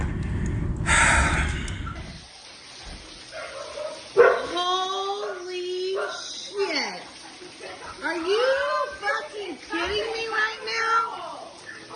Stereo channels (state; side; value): identical; both; correlation 1.00